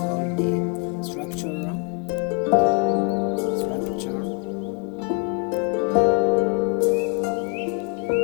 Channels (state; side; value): quieter; right; 32.2 dB